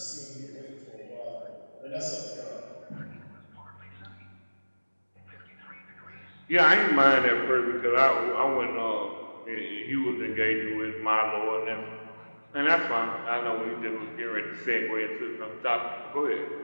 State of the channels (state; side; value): inverted; both; correlation -1.00